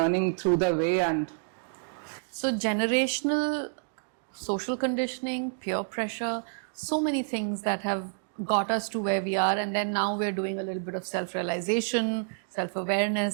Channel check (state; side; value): silent; left; digital silence